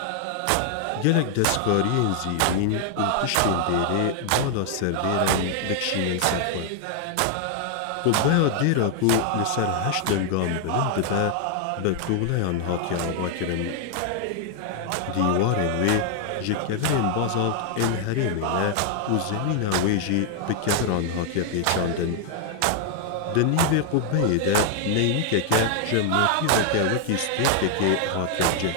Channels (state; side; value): different; both; correlation 0.00